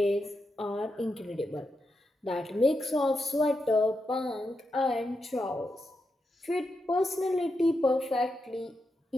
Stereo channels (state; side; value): normal; both; correlation 0.86